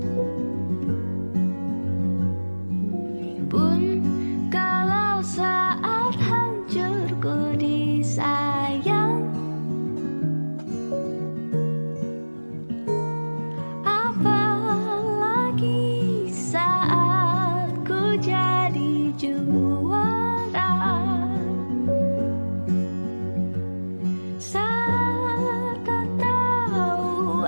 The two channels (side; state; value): both; inverted; correlation -1.00